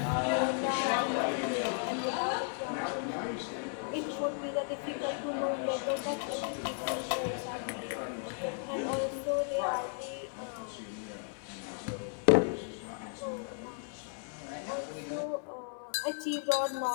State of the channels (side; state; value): right; silent; 55 dB below the other